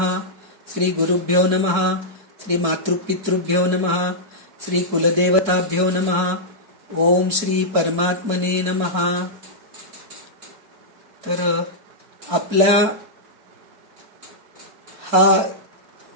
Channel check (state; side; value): late; left; 4.6 ms